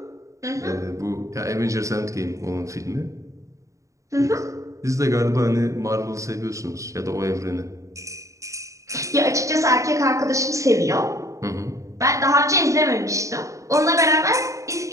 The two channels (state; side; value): late; left; 0.15 ms